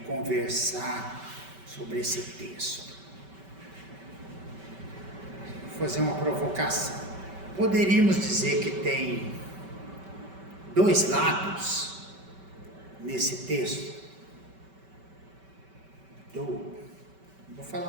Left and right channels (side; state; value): left; late; 5.2 ms